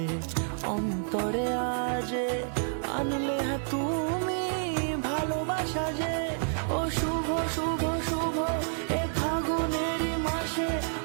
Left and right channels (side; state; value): left; silent; digital silence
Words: অন্তরে আজে, আনলে তুমি ভালোবাসা যে। ও শুভ শুভ শুভ এ ফাগুনেরই মাসে,